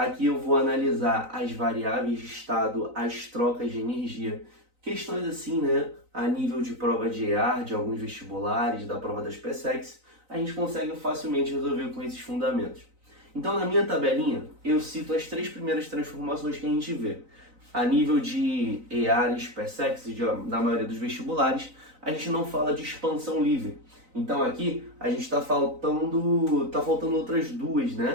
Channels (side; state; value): left; late; 3.9 ms